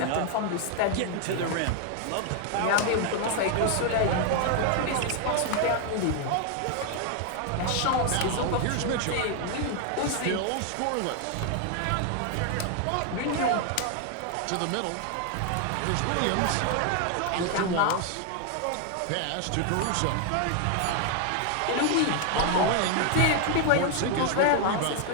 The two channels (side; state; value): both; different; correlation 0.00